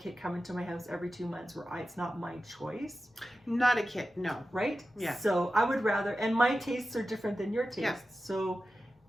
come into my house every 2 months where it's not my choice? Not a kit, no. Right? Yeah. So I would rather, and my tastes are different than your tastes. So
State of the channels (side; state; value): both; normal; correlation 0.93